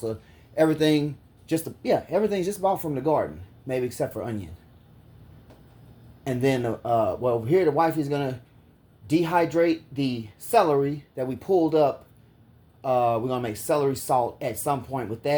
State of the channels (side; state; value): both; identical; correlation 1.00